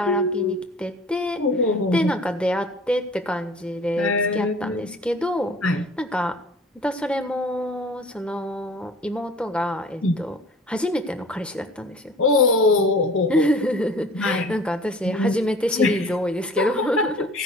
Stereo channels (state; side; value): normal; both; correlation 0.45